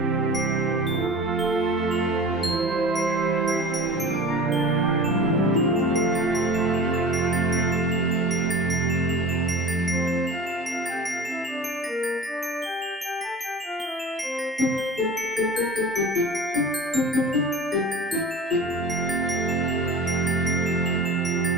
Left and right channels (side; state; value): both; normal; correlation 0.37